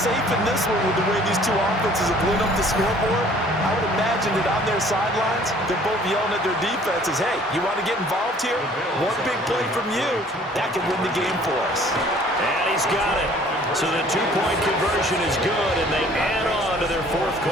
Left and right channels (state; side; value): normal; both; correlation 0.55